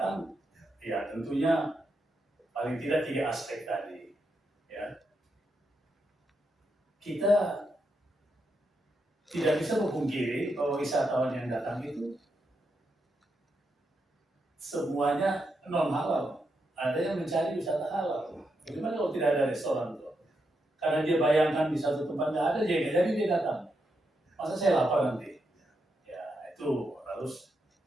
ya tentunya paling tidak 3 aspek tadi. Ya, kita tidak bisa memungkiri bahwa wisatawan yang datang itu semuanya non halal. Ada yang mencari wisata halal. Bagaimana kalau tidak ada restoran tuh? Karena dia bayangkan di satu tempat nggak ada, jadi dia datang. Masa saya lapar nanti? Ya itu harus,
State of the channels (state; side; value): normal; both; correlation 0.83